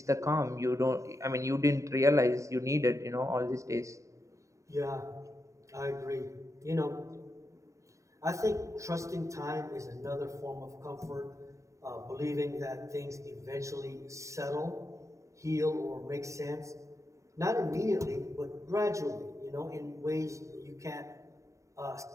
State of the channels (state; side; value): late; left; 0.15 ms